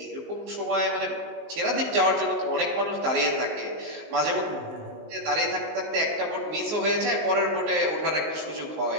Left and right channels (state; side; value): late; left; 19 ms